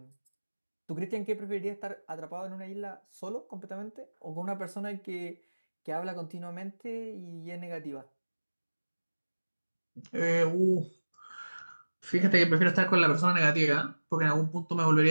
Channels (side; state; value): both; inverted; correlation -1.00